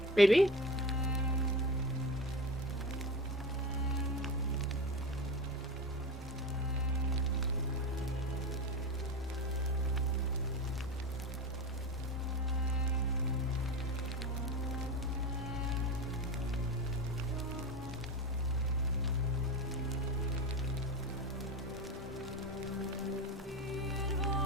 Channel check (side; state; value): both; normal; correlation 0.26